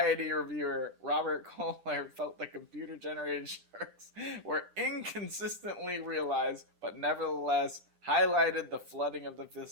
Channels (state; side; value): late; left; 10 ms